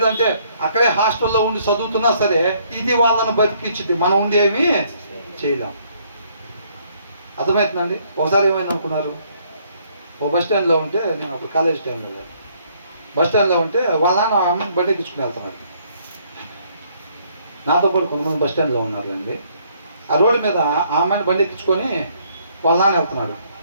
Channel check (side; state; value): both; inverted; correlation -0.66